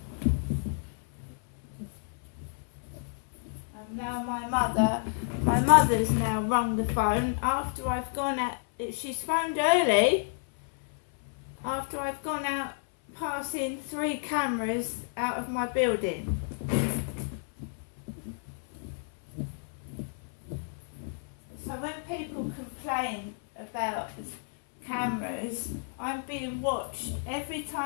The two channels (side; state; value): right; silent; 57 dB below the other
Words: Now my mother's now rung the phone after I've gone out. She's phoned early after I've gone out passing 3 cameras out of my building. So when people complain about cameras, I'm being watched every